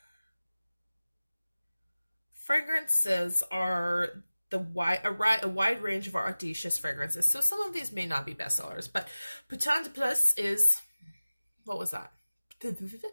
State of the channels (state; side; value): inverted; both; correlation -0.97